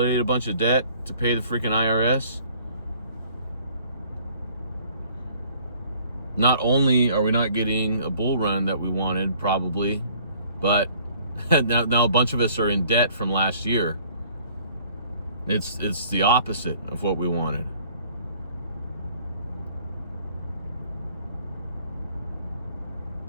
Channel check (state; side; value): inverted; both; correlation -0.56